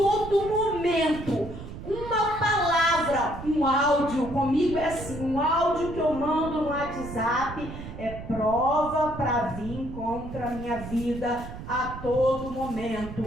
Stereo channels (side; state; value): right; noise; rumble, 11 dB below the sound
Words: momento, uma palavra, um áudio, comigo é assim, um áudio que eu mando no WhatsApp é prova para vir contra a minha vida a todo momento.